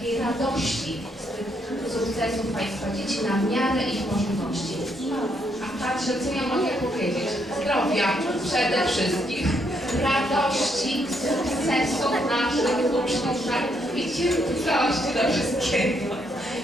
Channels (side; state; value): both; normal; correlation 0.74